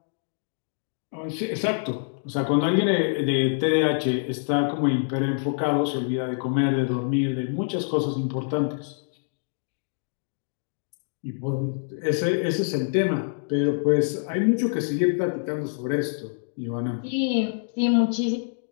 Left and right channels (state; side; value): silent; right; digital silence